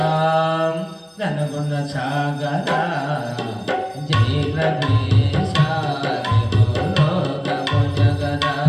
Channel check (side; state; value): both; identical; correlation 1.00